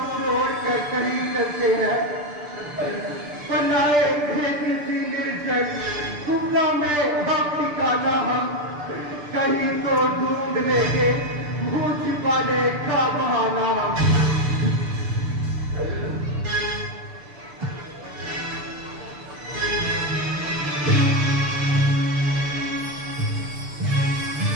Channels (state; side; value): late; left; 6.8 ms